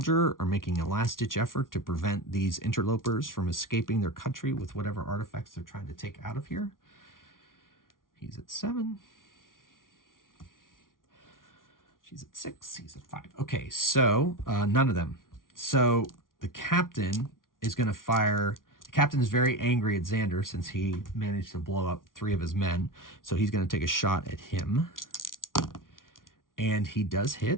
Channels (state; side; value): late; right; 0.90 ms